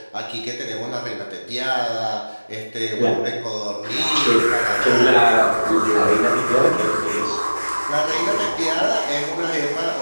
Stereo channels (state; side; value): inverted; both; correlation -1.00